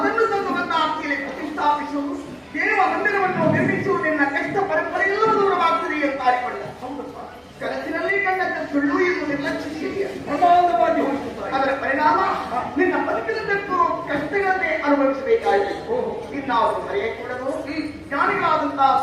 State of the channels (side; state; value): both; identical; correlation 1.00